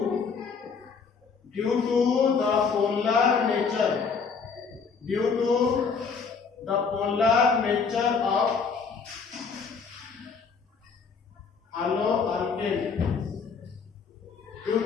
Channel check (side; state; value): right; quieter; 5.5 dB